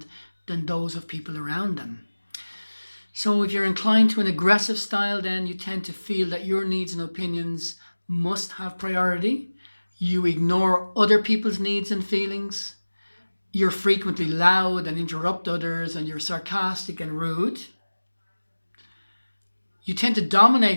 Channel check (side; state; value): both; inverted; correlation -1.00